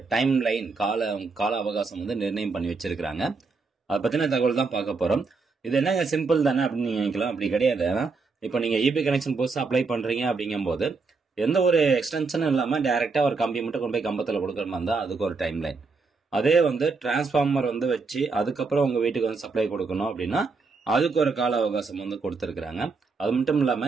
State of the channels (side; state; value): left; quieter; 4.3 dB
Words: டைம் லைன் கால அவகாசம் வந்து நிர்ணயம் பண்ணி வச்சிருக்கிறாங்க. அதை பற்றின தகவல் தான் பார்க்க போகிறோம். இது என்னங்க சிம்பிள் தானே அப்படின்னு நீங்கள் நினைக்கலாம். அப்படி கிடையாது. இப்போ நீங்கள் இபி கனெக்ஷன் புதுசாக அப்ளை பண்ணுறீங்க அப்படிங்கும்போது எந்த ஒரு எக்ஸ்டென்ஷனும் இல்லாமல் டேரெக்டாக ஒரு கம்பி மட்டும் கொண்டு போய் கம்பத்தில் கொடுக்குற மாதிரி இருந்தால் அதுக்கு ஒரு டைம் லைன். அதே வந்து டிரான்ஸ்ஃபார்மர் வந்து வச்சு அதுக்கப்புறம் உங்கள் வீட்டுக்கு வந்து சப்ளை கொடுக்கணும் அப்படின்னா அதுக்கு ஒரு கால அவகாசம் வந்து கொடுத்துருக்குறாங்க. அது மட்டும்